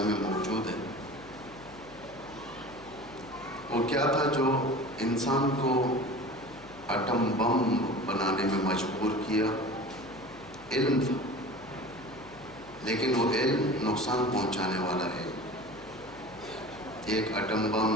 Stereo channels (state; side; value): noise; left; hum, 21 dB below the sound